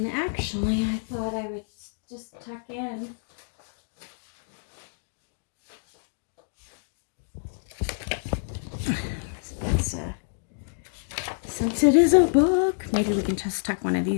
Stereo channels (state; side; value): silent; right; digital silence